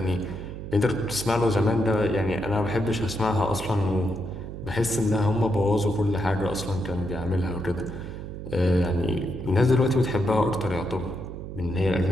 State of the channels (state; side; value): noise; right; hum, 9 dB below the sound